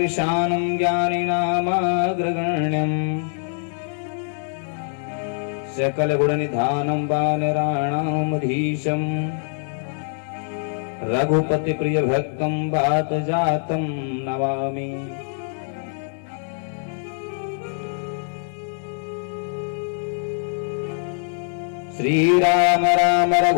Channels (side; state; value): right; silent; digital silence